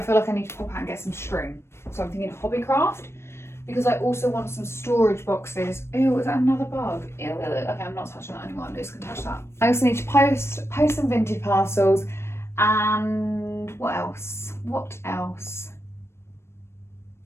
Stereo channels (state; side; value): late; right; 0.12 ms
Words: feel like I need to pop out and get some string. So I'm thinking Hobbycraft because I also want some storage boxes. Ew, is that another bug? Ew, okay, I'm not touching that anymore. I'm just gonna touch that. I also need to post some vintage parcels and what else?